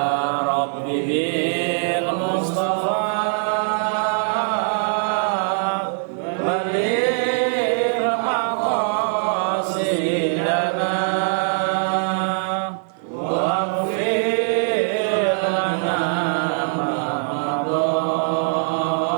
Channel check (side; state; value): left; silent; digital silence